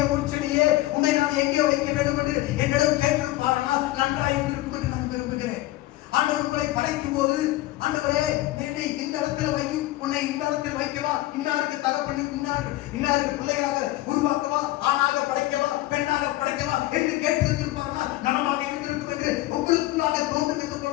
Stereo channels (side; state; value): right; quieter; 17.1 dB